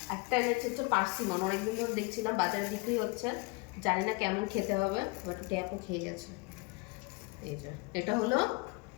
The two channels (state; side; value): quieter; right; 27.4 dB